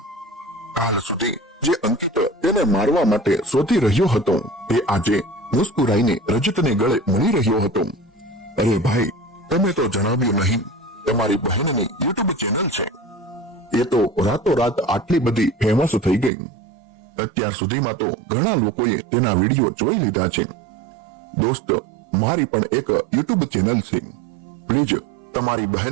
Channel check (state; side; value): drops out; left; at 16.3 s